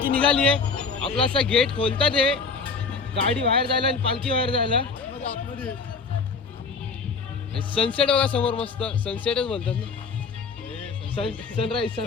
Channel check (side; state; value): right; quieter; 4.7 dB